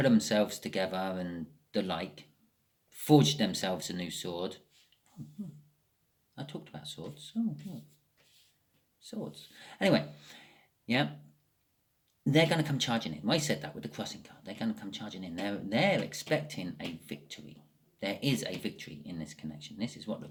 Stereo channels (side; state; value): both; identical; correlation 1.00